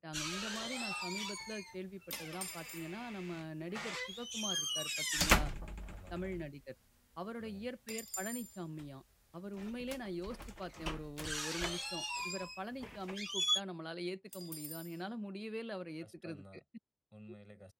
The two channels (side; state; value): both; identical; correlation 1.00